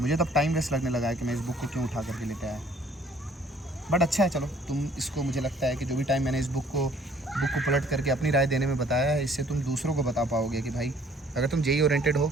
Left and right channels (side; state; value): both; normal; correlation 0.58